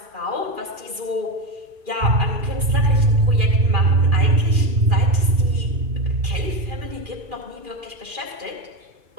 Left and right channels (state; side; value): late; left; 2.4 ms